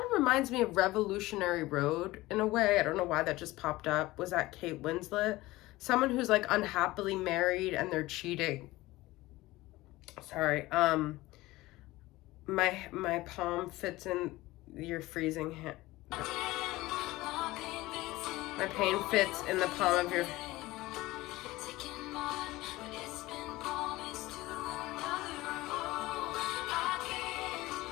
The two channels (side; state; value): right; quieter; 18.8 dB